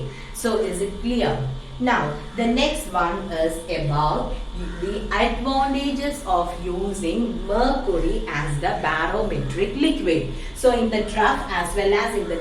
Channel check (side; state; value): both; identical; correlation 1.00